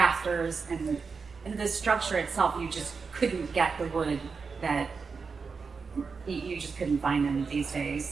and the structure itself, you just couldn't get the wood that you just couldn't find them these days.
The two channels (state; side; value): quieter; left; 5.1 dB